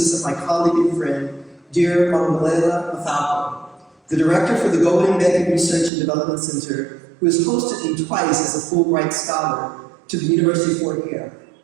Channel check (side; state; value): left; drops out; at 5.9 s